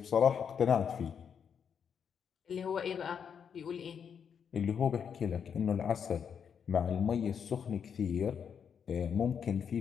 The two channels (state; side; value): quieter; right; 7.3 dB